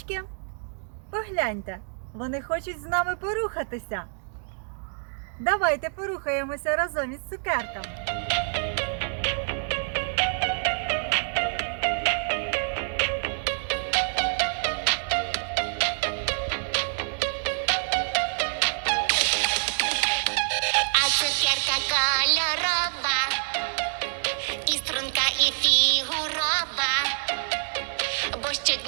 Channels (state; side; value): silent; left; 60 dB below the other